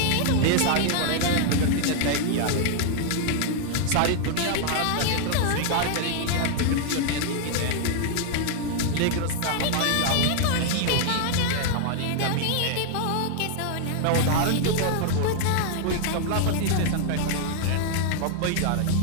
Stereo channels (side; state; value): both; different; correlation 0.00